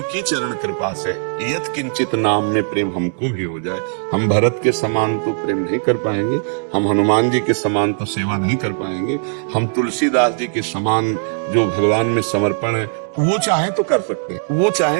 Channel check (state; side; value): silent; left; digital silence